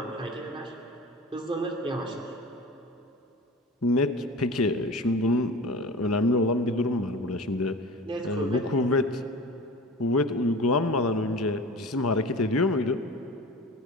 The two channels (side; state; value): both; normal; correlation 0.36